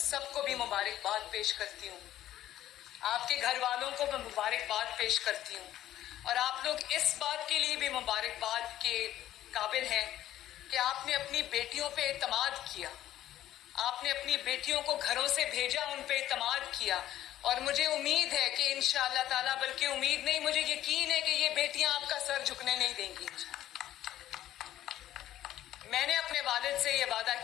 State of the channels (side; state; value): right; quieter; 13.0 dB